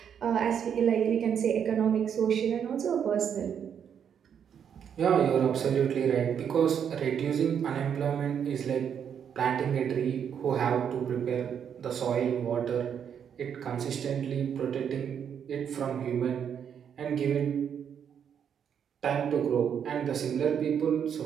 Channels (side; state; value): left; quieter; 8.1 dB